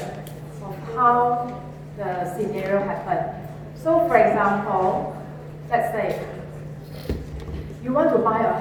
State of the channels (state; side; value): identical; both; correlation 1.00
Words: of how the scenario happened. So for example, let's say you want to buy a